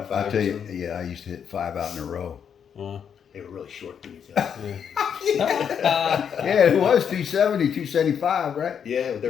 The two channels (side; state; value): right; quieter; 7.8 dB